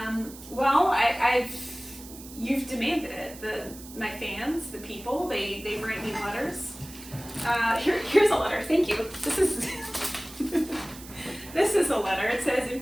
you've demanded it. My fans, the people, they write me letters. Here's a letter. Thank you. This is a letter. It says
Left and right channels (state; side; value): noise; right; hiss, 16 dB below the sound